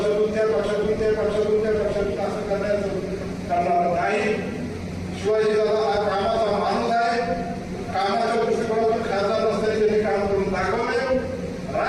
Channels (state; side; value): identical; both; correlation 1.00